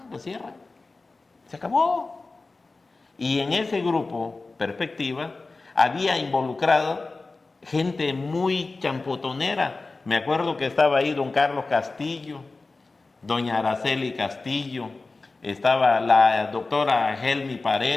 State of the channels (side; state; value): right; quieter; 3.6 dB